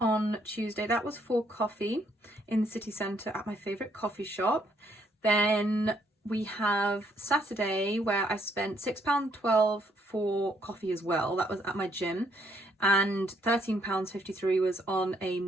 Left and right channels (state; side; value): normal; both; correlation 0.70